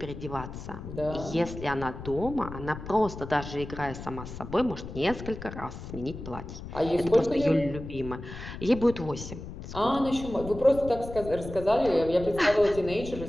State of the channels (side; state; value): left; noise; rumble, 10 dB below the sound